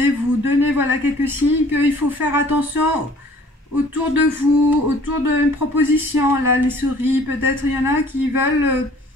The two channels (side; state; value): both; normal; correlation 0.54